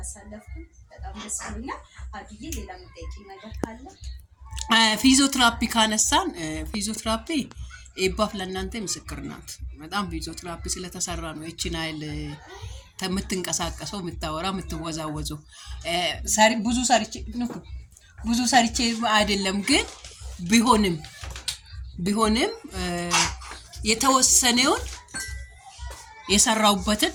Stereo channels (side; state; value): both; identical; correlation 1.00